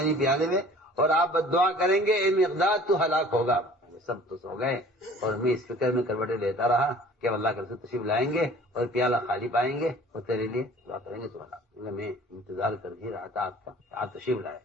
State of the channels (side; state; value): both; normal; correlation 0.49